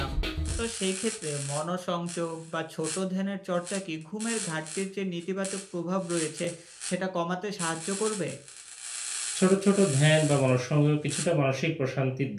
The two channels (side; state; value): both; identical; correlation 1.00